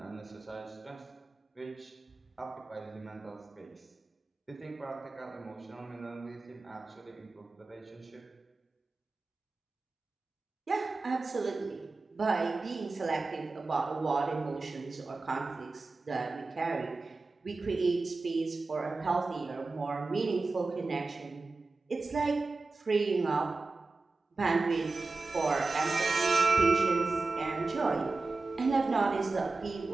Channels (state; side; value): quieter; left; 3.6 dB